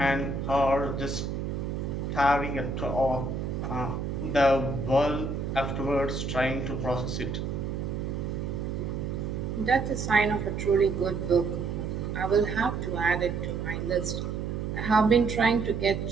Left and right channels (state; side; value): noise; right; hum, 3 dB below the sound